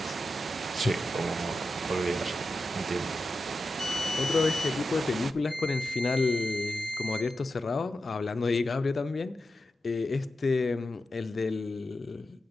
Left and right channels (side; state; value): both; normal; correlation 0.90